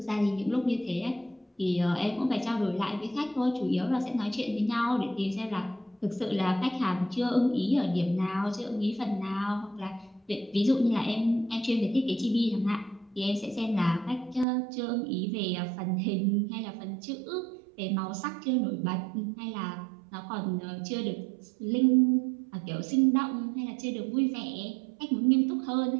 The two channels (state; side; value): drops out; left; at 14.5 s